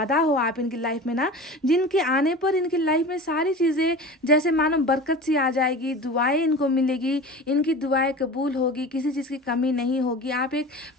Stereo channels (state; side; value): normal; both; correlation 0.34